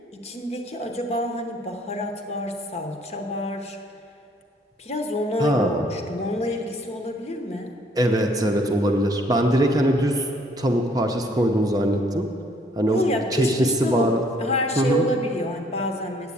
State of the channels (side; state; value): both; normal; correlation 0.63